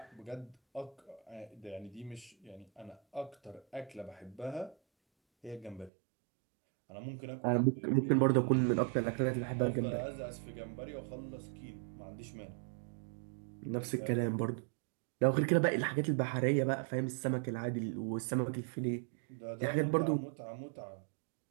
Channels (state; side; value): drops out; left; at 5.9 s